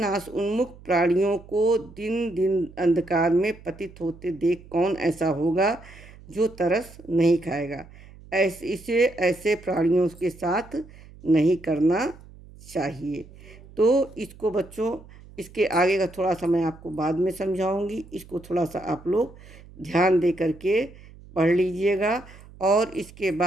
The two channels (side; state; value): right; noise; hum, 21 dB below the sound